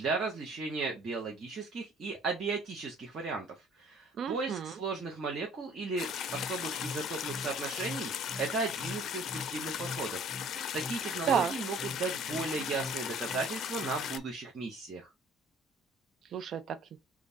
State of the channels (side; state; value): both; normal; correlation 0.53